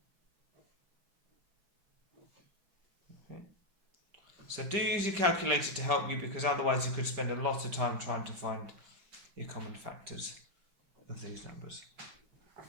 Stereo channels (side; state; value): left; late; 5.2 ms